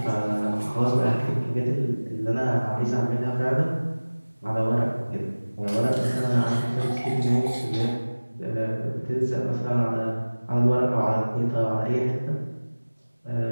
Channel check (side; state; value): both; inverted; correlation -1.00